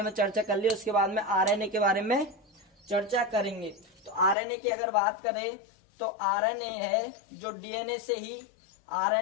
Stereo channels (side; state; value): right; drops out; at 4.4 s